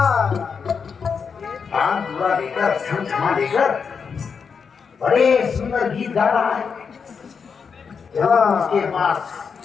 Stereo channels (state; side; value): quieter; right; 6.0 dB